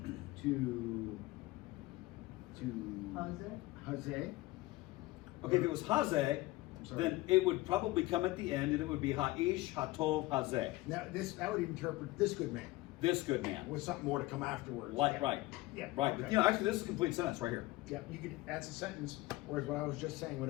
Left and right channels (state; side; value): quieter; right; 19.5 dB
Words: to Hazeh. Okay, if it was hazeh, I'm sorry. then it would probably come at the end and it would be ha'ish, hatov, hazeh. Now that would interpret this good man This good man. with something more to come afterwards. Like, Yeah. right. Yeah. Right. Okay. But, you know, actually, this is a complete sentence right here. Yeah, you could. That's a sentence. Whereas what I was just saying would